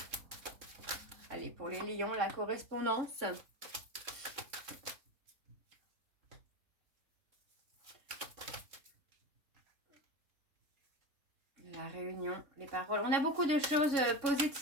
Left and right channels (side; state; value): left; late; 3.6 ms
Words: Allez, pour les lions, la correspondance. La réunion, les paroles. On a beaucoup de choses